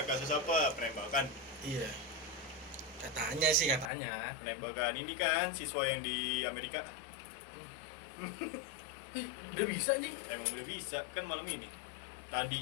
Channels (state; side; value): drops out; right; at 3.9 s